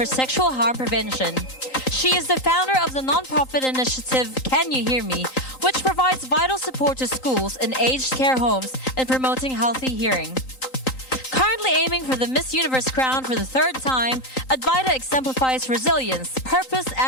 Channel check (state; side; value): late; right; 3.9 ms